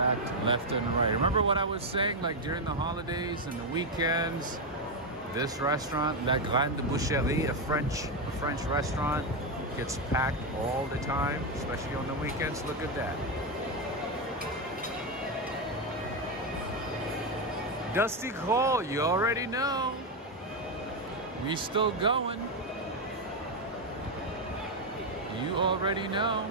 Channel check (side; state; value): both; normal; correlation 0.06